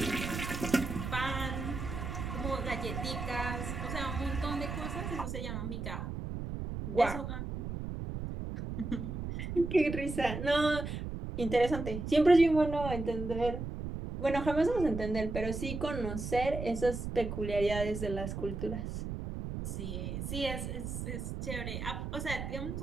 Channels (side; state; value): right; noise; rumble, 5 dB below the sound